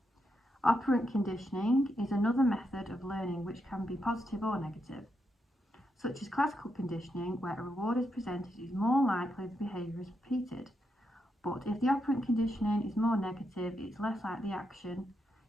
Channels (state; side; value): normal; both; correlation 0.83